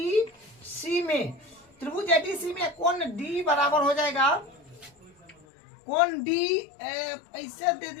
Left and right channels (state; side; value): drops out; right; at 5.5 s